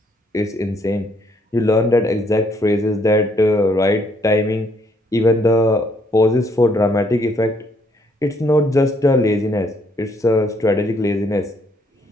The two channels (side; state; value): both; normal; correlation 0.69